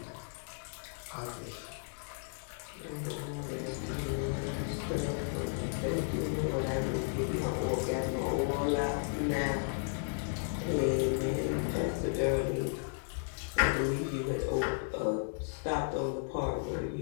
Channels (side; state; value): right; silent; digital silence